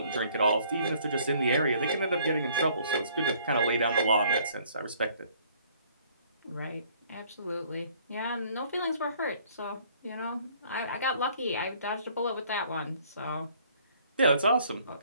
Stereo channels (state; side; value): inverted; both; correlation -0.60